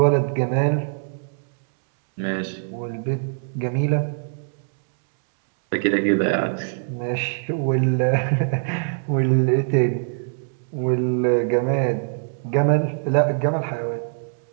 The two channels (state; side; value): silent; left; digital silence